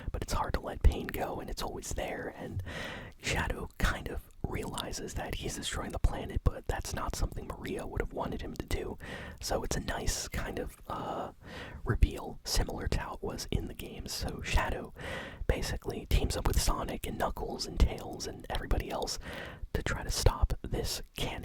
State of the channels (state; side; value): identical; both; correlation 1.00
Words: But it's hard to let pain go, and it's always there. And Shadow kind of realizes that he's destroying the planet, but that's not something Maria would have wanted him to do. So it's a nice kind of reveal, similar to how it was in the games. So Shadow basically teams up with Sonic and Knuckles and Tails and everybody else to try to stop this